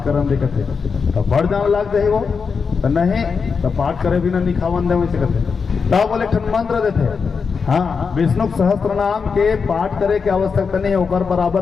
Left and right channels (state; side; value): quieter; right; 5.5 dB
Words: करन दे कथे तो बढ़ जाने लग जाए वो तो नहीं तो पाठ करे भी ना निखावन दे वैसे कथे तब बोले ठन मंत्र देते। हाँ, विष्णु सहस्त्र नाम के पाठ करे की आवश्यकता नहीं है, ओकर